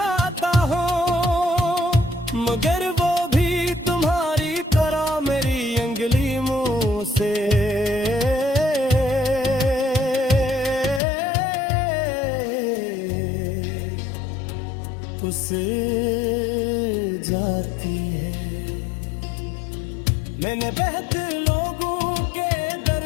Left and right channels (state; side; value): drops out; right; at 11.0 s